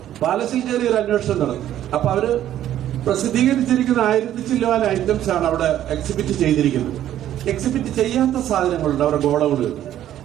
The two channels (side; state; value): left; quieter; 11.9 dB